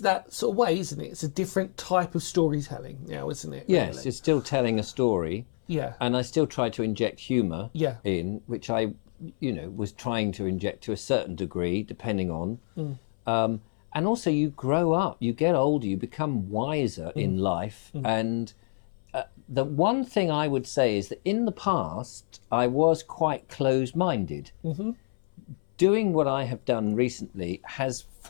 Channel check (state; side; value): silent; right; 59 dB below the other